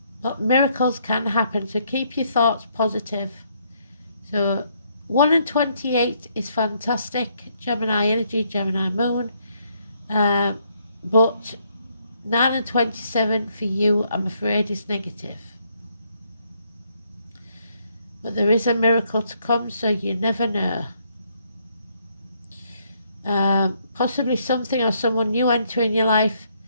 but miracles can happen, so keep your thoughts positive. So 1 and 28 is fantastic, Gemini energy, Gemini moon, but 9 and 27 for you, I'm afraid, is negative. But there is a miracle to come, so you never know. Possibly something or someone new entering your life,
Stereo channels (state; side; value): inverted; both; correlation -0.71